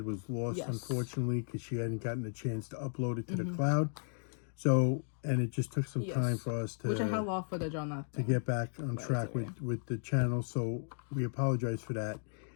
was lost, unfortunately, because she hadn't gotten a chance to upload it to the cloud. So, and it just took some time for us to... Which I had a lot of footage on that. To get back on track with the channel. So, we apologize for that.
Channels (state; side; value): silent; right; digital silence